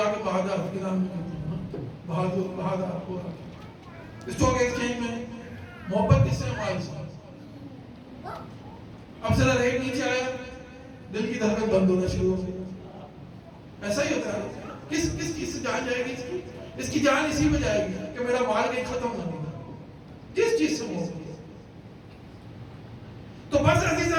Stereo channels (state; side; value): identical; both; correlation 1.00